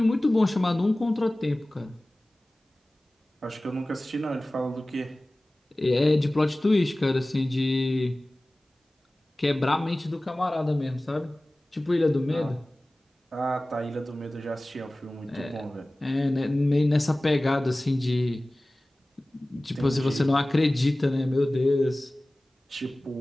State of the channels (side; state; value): both; normal; correlation 0.98